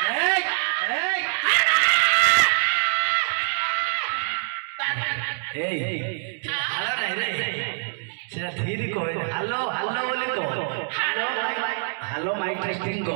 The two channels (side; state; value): left; silent; digital silence